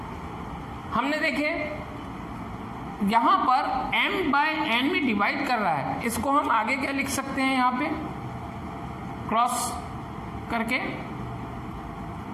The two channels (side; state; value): both; identical; correlation 1.00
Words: हमने देखे यहां पर m/n में डिवाइड कर रहा है, इसको हम आगे क्या लिख सकते हैं, यहां पे क्रॉस करके